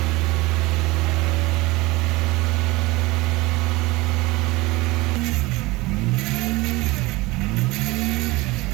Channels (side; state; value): left; quieter; 21.8 dB